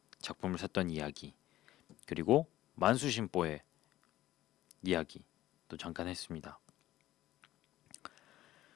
작품을 샀던 이야기, 그리고 만수심보의 이야기 또 잠깐 했습니다.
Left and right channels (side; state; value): right; quieter; 14.8 dB